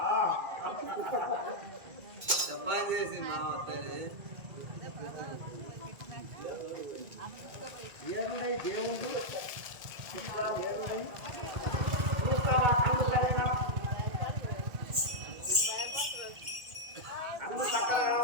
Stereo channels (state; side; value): late; left; 2.2 ms